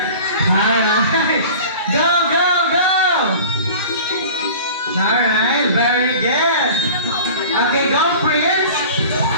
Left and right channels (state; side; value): inverted; both; correlation -0.40